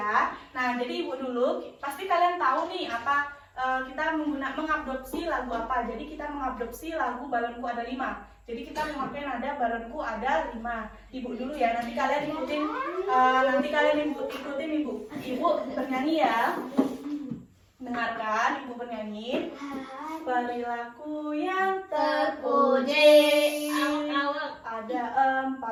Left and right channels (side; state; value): both; identical; correlation 1.00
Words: Nah, jadi ibu dulu pasti kalian tahu nih apa kita mengadopsi lagu apa. Jadi kita mengadopsi lagu Balonku Ada 5. Jadi kita memakai nada Balonku Ada 5. Ibu dulu ya, nanti kalian ikutin ibu bernyanyi ya. Dengarkan ibu bernyanyi. Perilaku yang terpuji, ada